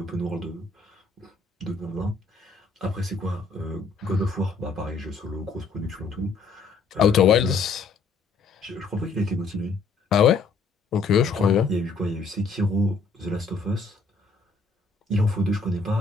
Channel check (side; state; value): right; quieter; 4.3 dB